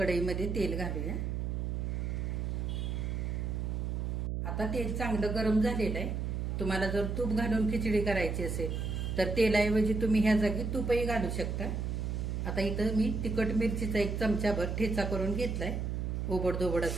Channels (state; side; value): noise; right; hum, 1 dB below the sound